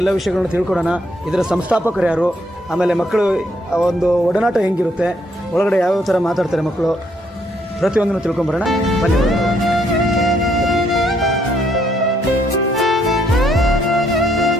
ವಿಷಯಗಳನ್ನ ತಿಳ್ಕೊಡೋಣ. ಇದರ ಸಂಸ್ಥಾಪಕರು ಯಾರು, ಆಮೇಲೆ ಮಕ್ಕಳು ಒಂದು ಒಡನಾಟ ಹೆಂಗಿರುತ್ತೆ, ಒಳಗಡೆ ಯಾವ್ಯಾವ ಥರ ಮಾತಾಡ್ತಾರೆ ಮಕ್ಕಳು, ಪ್ರತಿಯೊಂದನ್ನು ತಿಳ್ಕೊಂಬರೋಣ. ಬನ್ನಿ.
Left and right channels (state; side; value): normal; both; correlation 0.71